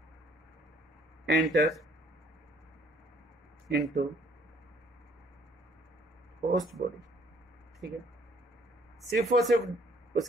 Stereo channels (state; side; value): normal; both; correlation 0.61